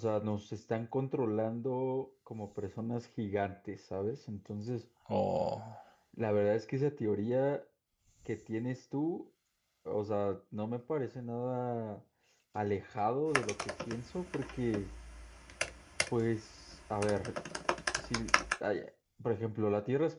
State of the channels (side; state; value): both; identical; correlation 1.00